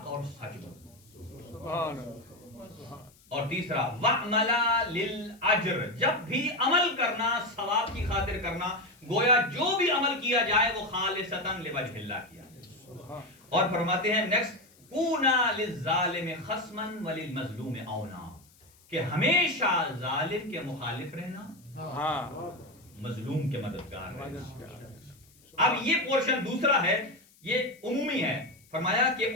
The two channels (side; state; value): left; noise; hiss, 29 dB below the sound